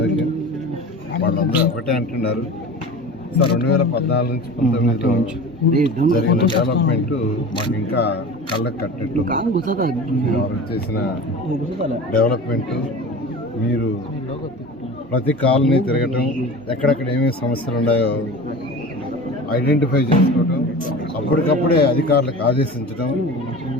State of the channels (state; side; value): normal; both; correlation 0.35